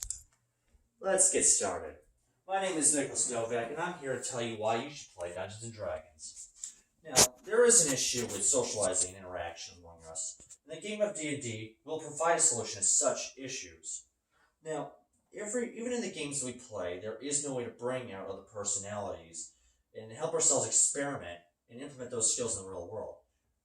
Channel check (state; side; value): identical; both; correlation 1.00